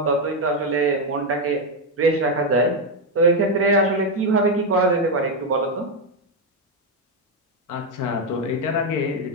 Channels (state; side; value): normal; both; correlation 0.05